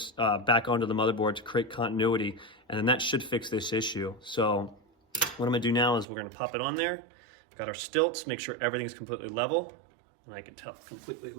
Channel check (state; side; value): drops out; left; at 6.1 s